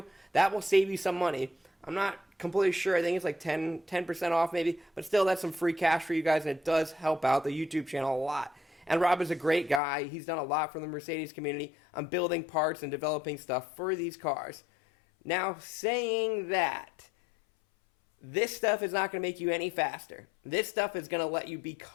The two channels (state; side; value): drops out; right; at 9.8 s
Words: That will save you some money. I'm not completely sure. I think it's like 10% off maybe. But still, that's some free cash for you guys, and it does help out the YouTube channel a lot. And Rob is a great guy. He's done a lot for the Mercedes community on building parts and developing stuff for these cars. Now, saying that, this stuff is not going to make you any faster. This stuff is going to let you